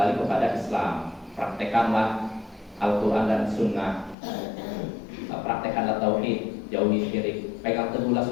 kepada Islam. Praktekanlah Al-Quran dan Sunnah, praktekanlah tauhid, jauhi syirik, pegang teguhlah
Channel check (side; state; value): right; drops out; at 4.2 s